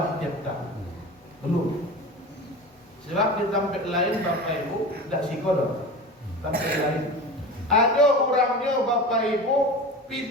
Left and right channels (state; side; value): normal; both; correlation 0.31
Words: tiap tahun. Belum. Sebab di tempat lain Bapak Ibu tidak sikodok. Tempat lain ada orangnya Bapak Ibu